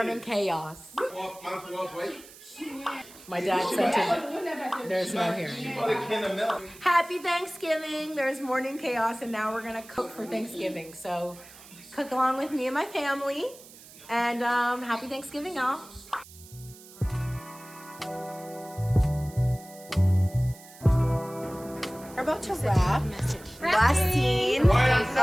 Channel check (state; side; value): noise; right; hiss, 20 dB below the sound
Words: chaos. My dad sent it. There's no hearing. Happy Thanksgiving. There's morning chaos, and now we're gonna cook for Thanksgiving. So, cook along with me and my family. And happy Thanksgiving, y'all. We're about to wrap. Last scene of the